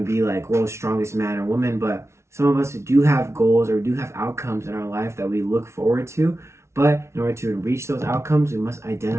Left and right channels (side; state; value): left; late; 0.13 ms